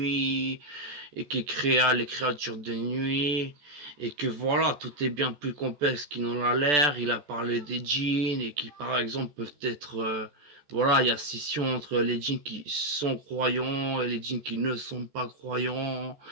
et qu'il créa les créatures de nuit, et que voilà, tout est bien plus complexe qu'il n'en a l'air. Il a parlé des djinns, et qui par exemple peuvent être... voilà, il y a scission entre les djinns qui sont croyants et les djinns qui ne sont pas croyants.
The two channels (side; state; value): left; late; 14 ms